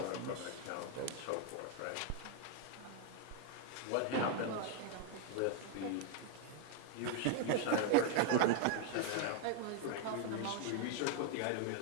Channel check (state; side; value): different; both; correlation 0.00